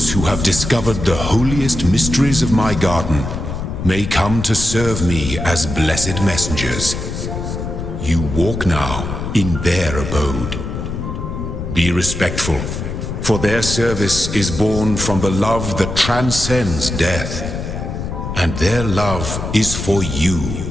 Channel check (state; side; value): noise; left; rumble, 5 dB below the sound